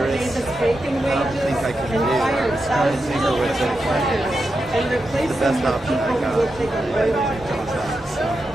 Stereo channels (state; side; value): normal; both; correlation 0.88